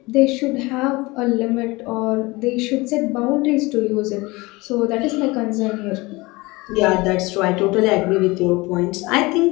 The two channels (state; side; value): quieter; right; 23.0 dB